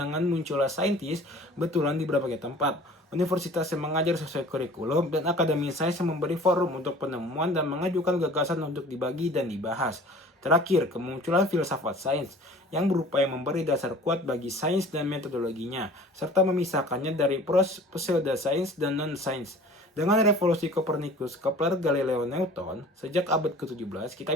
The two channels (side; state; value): both; normal; correlation 0.46